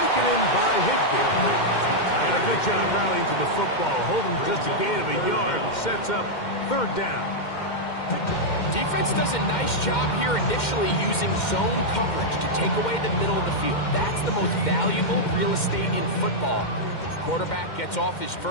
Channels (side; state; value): right; late; 2.1 ms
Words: in by Higbee. And a good job rallying to the football, holding just a gain of a yard and sets up third down. Defense does a nice job here initially using zone coverage to take away the middle of the field. That's the most valuable real estate in football. Quarterback gets off his